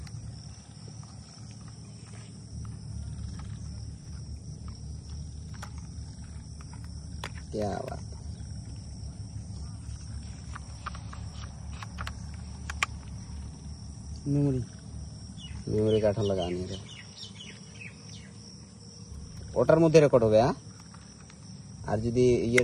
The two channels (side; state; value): both; identical; correlation 1.00